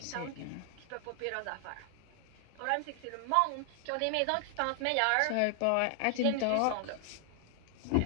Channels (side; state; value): both; different; correlation 0.00